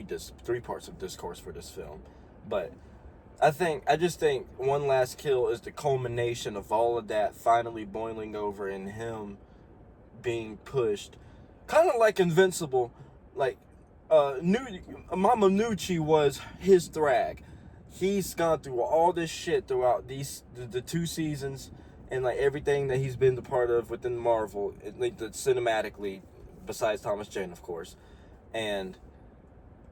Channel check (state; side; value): identical; both; correlation 1.00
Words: three parts of discourse for this film. But I just think One Last Kill is the culmination of all of that finally boiling over in him being pushed. Kind of like Invincible. Like, Mama Nucci was his Thrag. He's gone through all this shit throughout the 2 seasons and, like, everything that he's been the part of within Marvel, like, cinematically, besides Thomas Jane, of course. And